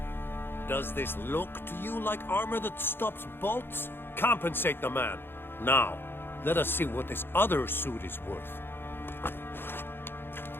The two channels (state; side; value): late; right; 0.10 ms